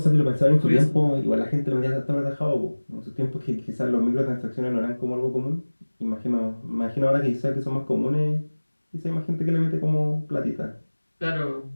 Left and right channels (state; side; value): inverted; both; correlation -1.00